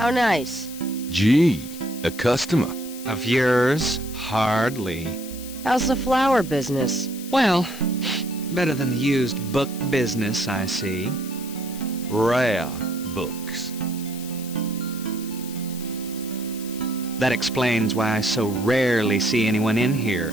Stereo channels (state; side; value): noise; left; hiss, 14 dB below the sound